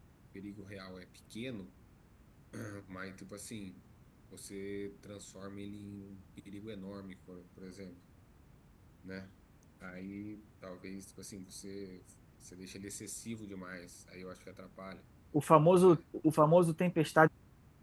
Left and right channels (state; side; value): identical; both; correlation 1.00